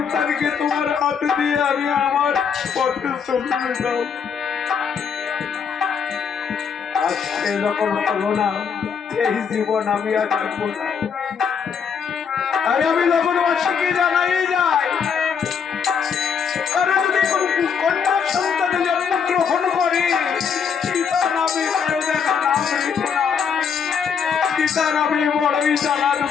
তোমার হাতে দিয়ে আমি আমার পথে চলে যেতাম। আজকে যখন হলো না এই জীবন আমি আর রাখবো না। আমি যখন বাসীকে জানাই যাই তারা যদি কন্যা সন্তানে জন্ম গ্রহণ করে সীতা নামে দেখা নাম রেখো না, সীতা নামে বড়ই জানা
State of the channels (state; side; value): quieter; right; 6.7 dB